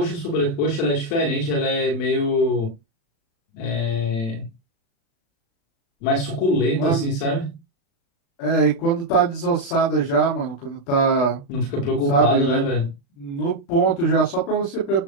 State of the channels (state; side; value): late; right; 36 ms